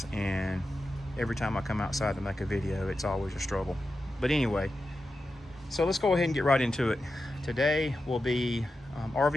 and every time I come outside to make a video, it's always a struggle. But anyway, so let's go ahead and get right into it. Today will be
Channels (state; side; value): normal; both; correlation 0.91